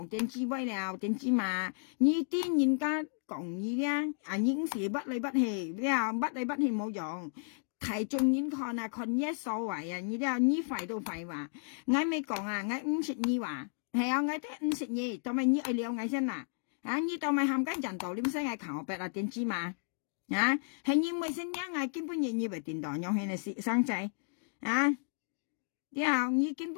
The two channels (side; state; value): right; silent; digital silence